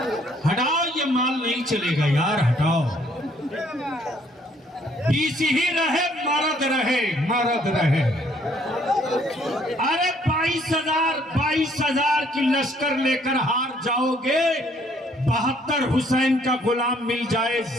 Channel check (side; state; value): both; normal; correlation 0.64